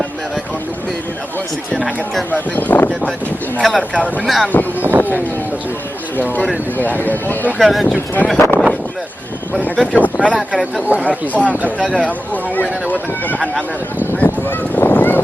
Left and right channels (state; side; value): normal; both; correlation 0.93